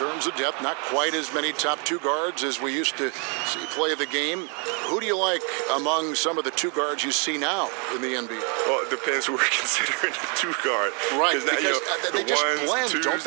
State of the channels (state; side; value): quieter; left; 36.4 dB